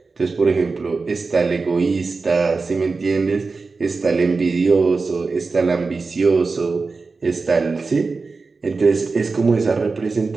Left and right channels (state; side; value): quieter; left; 4.1 dB